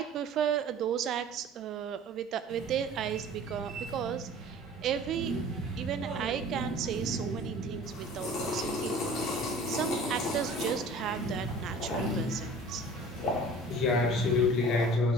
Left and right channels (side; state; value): both; normal; correlation 0.45